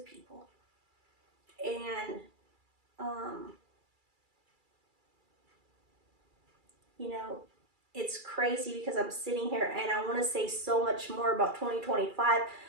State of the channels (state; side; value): late; left; 2.3 ms